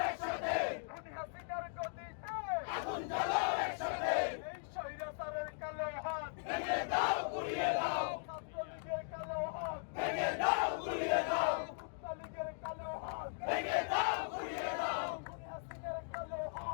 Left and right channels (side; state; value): right; silent; digital silence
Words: একসাথে, খুনি হাসিনার গদিতে আগুন জ্বালাও একসাথে, এই স্বৈরাচারের কালো হাত, ভেঙে দাও গুড়িয়ে দাও, ছাত্রলীগের কালো হাত, ভেঙে দাও গুড়িয়ে দাও, ছাত্রলীগের কালো হাত, ভেঙে দাও গুড়িয়ে দাও, খুনি হাসিনার কালো